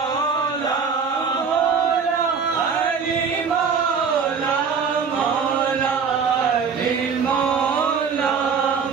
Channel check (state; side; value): quieter; left; 5.9 dB